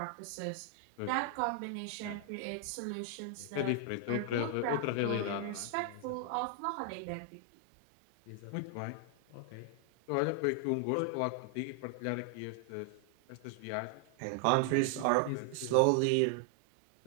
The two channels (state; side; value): different; both; correlation 0.00